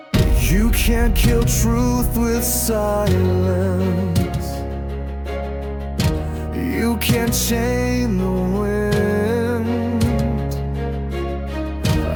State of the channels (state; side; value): identical; both; correlation 1.00